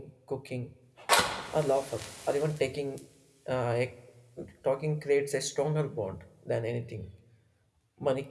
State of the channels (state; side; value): identical; both; correlation 1.00